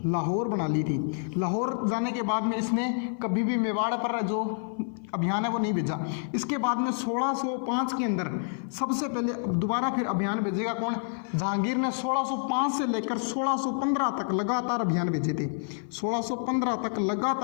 लाहौर बना ली थी। लाहौर जाने के बाद में इसने कभी भी मेवाड़ पर जो अभियान है वो नहीं भेजा। इसके बाद में 1605 के अंदर सबसे पहले दोबारा फिर अभियान भेजेगा कौन, जहांगीर ने 1605 से लेकर 1615 तक लगातार अभियान भेजे थे। 1615 तक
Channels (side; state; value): right; silent; 56 dB below the other